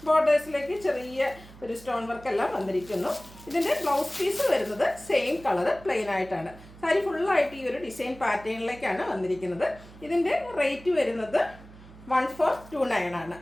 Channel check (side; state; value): right; noise; hum, 20 dB below the sound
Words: ബോർഡേഴ്സിലേക്ക് ചെറിയ ഒരു സ്റ്റോൺ വർക്ക് എല്ലാം വന്നിരിക്കുന്നു. ഇതിൻ്റെ ബ്ലൗസ് പീസ് വരുന്നത് സെയിം കളർ പ്ലെയിൻ ആയിട്ടാണ്. സാരി ഫുള്ളായിട്ട് ഈ ഒരു ഡിസൈൻ പാറ്റേണിലേക്കാണ് വന്നിരിക്കുന്നത്. ഇതിൻ്റെ റേറ്റ് വരുന്നത് 1429 ആണ്.